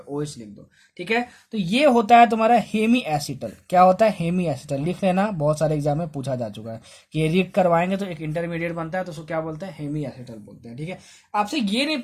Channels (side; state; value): both; identical; correlation 1.00